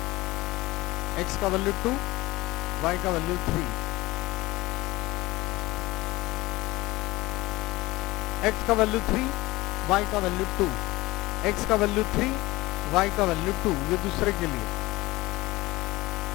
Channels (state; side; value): quieter; right; 20.1 dB